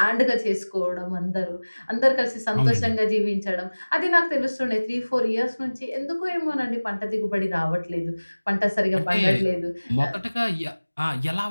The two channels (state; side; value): inverted; both; correlation -1.00